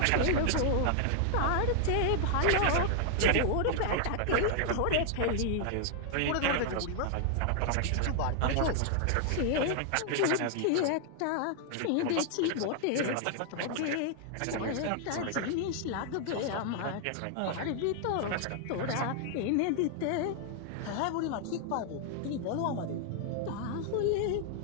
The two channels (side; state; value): both; different; correlation 0.00